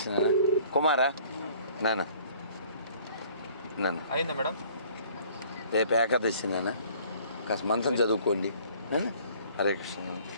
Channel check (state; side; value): inverted; both; correlation -0.54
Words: కుమారా నాన్న. అయిందా మేడం? రేపు ఏకాదశి నాన్న కాస్త మంత్రం చదువుకోండి. హరే కృష్ణ